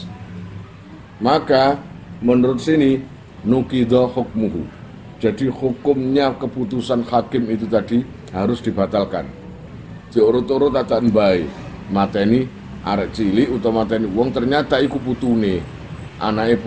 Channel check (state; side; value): identical; both; correlation 1.00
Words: Maka menurut sini nukido hukmuhu. Jadi hukumnya keputusan hakim itu tadi harus dibatalkan. Diurut-urut aja mbae, mateni arek cilik utawa mateni wong ternyata iku putune. Anake